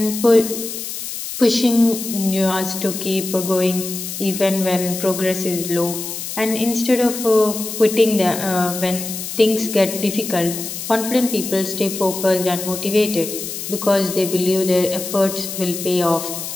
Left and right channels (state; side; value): noise; left; hiss, 7 dB below the sound